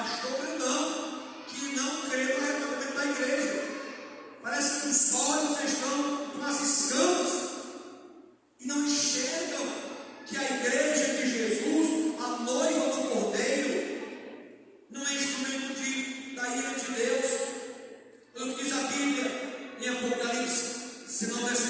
grandão, que não crê no arrebatamento da igreja. Parece que os olhos estão com as escamas e não enxergam que a igreja de Jesus, a noiva do Cordeiro, não é instrumento da ira de Deus. O que diz a Bíblia em Apocalipse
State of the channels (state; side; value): identical; both; correlation 1.00